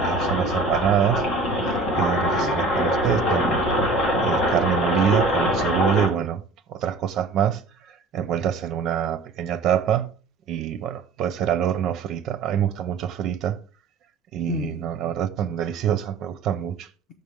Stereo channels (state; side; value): quieter; left; 3.9 dB